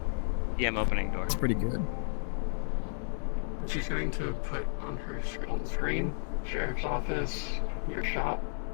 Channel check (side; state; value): right; silent; digital silence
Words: Yeah, I'm opening door. it's pretty good. She's going to put on on the screen, sheriff's office, your shop,